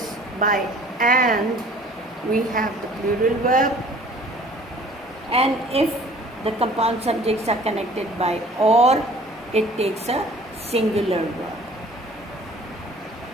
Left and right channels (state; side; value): normal; both; correlation 0.50